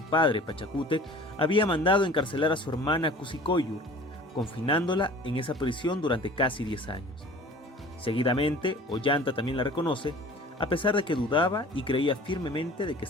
padre, Pachacútec, había mandado encarcelar a su hermana Cusicoyur, confinándola en esa prisión durante casi 10 años. Seguidamente, Ollanta también la reconoce, a pesar de que dudaba y creía firmemente de que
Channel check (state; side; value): normal; both; correlation 0.45